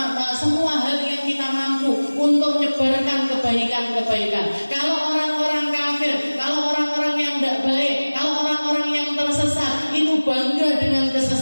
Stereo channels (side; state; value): both; inverted; correlation -1.00